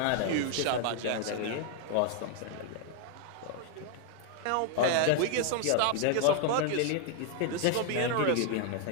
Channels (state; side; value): different; both; correlation 0.00